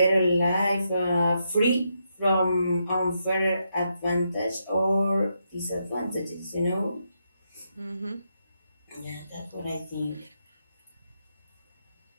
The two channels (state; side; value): inverted; both; correlation -0.81